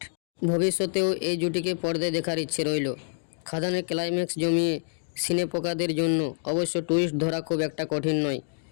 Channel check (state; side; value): silent; right; digital silence